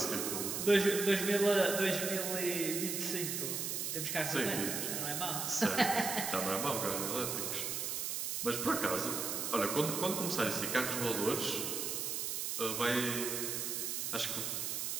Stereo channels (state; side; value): noise; right; hiss, 2 dB below the sound